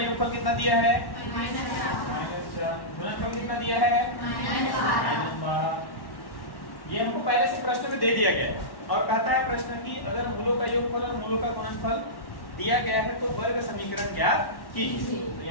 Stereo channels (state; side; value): late; right; 1.1 ms